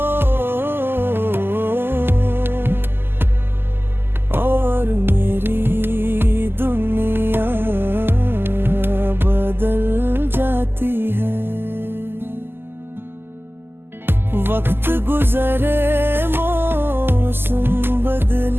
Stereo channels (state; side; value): late; left; 0.11 ms